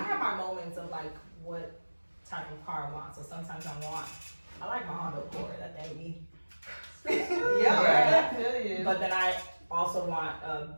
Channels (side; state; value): both; inverted; correlation -1.00